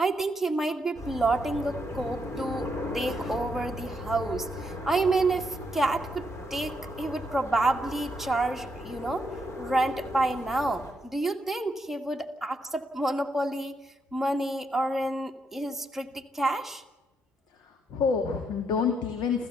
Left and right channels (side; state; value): both; normal; correlation 0.78